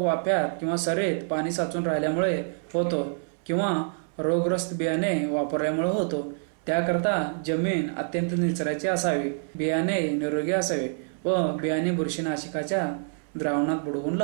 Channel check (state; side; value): silent; left; 60 dB below the other